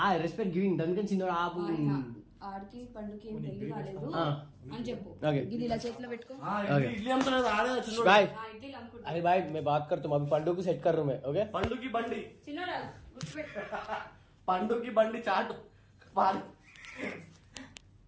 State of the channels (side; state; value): both; identical; correlation 1.00